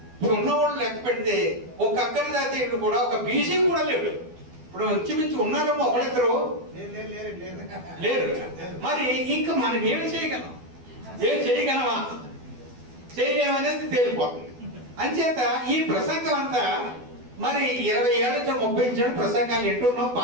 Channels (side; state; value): left; late; 12 ms